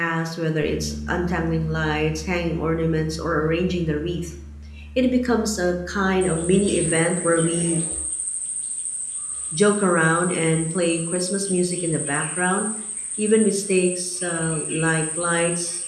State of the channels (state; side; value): identical; both; correlation 1.00